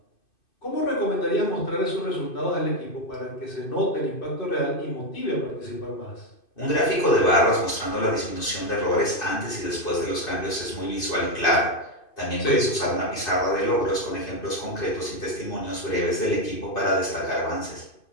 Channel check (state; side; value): late; right; 2.5 ms